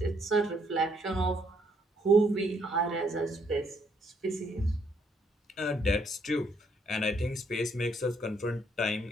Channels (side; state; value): both; normal; correlation 0.70